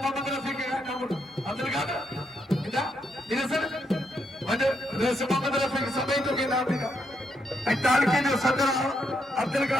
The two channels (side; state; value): both; normal; correlation 0.78